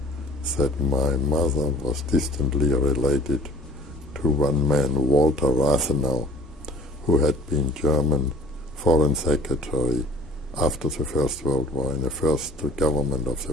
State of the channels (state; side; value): normal; both; correlation 0.50